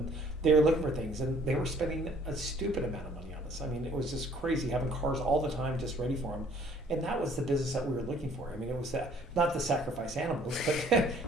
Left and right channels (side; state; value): both; normal; correlation 0.58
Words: they were looking for things and they were spending a stupid amount of money on us. I mean, it was just crazy having cars all the time just ready for them. And that was the business that we were looking for. I mean, it was that, not the sacrifice animals, but